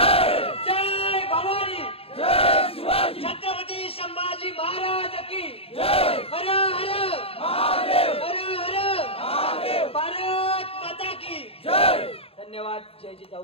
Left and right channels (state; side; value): late; right; 0.28 ms